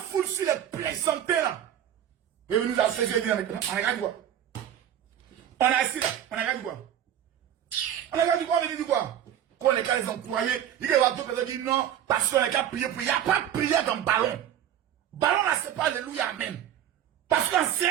sur les plaisantés là. Et nous a fait jeudi. On regarde quoi? On est assis là. On regarde quoi? On regarde quoi? On dit quoi? Quand les gars les ont croyés, il y a d'autres personnes qui disent non, parce qu'on est qu'à prier. Il n'y a pas de prière dans le ballon. Ballon là, c'est pas alléluia, amen. Parce qu'en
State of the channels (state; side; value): quieter; left; 10.4 dB